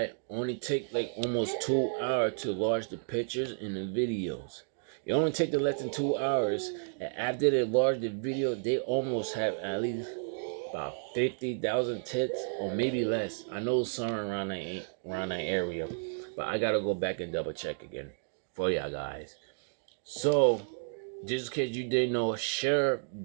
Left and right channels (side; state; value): left; silent; digital silence